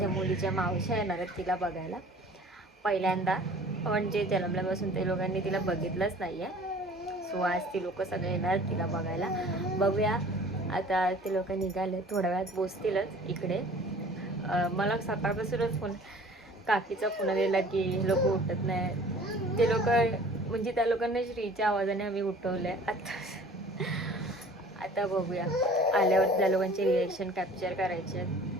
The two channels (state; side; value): normal; both; correlation 0.48